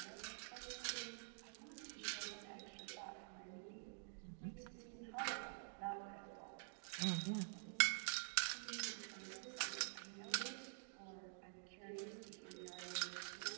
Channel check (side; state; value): left; silent; digital silence